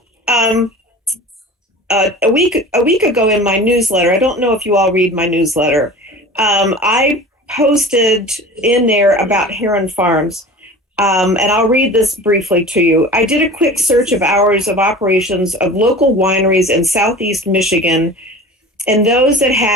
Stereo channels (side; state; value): both; normal; correlation 0.37